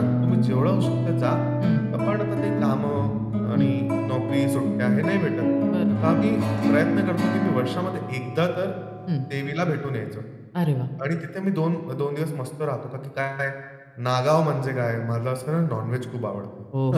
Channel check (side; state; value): both; identical; correlation 1.00